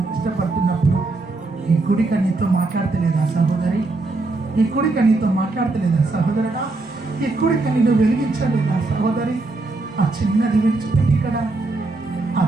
ఇష్టపడుతున్నప్పుడు ఈ కుడిక నీతో మాట్లాడతలేదా సహోదరి? ఈ కుడిక నీతో మాట్లాడతలేదా సహోదరుడా? ఈ కుడిక నిన్ను వెలిగించలేదా సహోదరి? ఆ చిన్నది విడిచిపెట్టి ఇక్కడ ఆ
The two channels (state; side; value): quieter; left; 3.3 dB